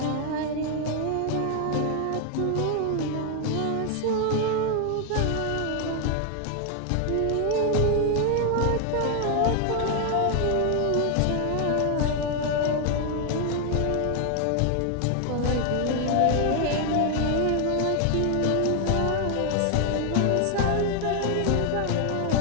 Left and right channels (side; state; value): both; different; correlation 0.00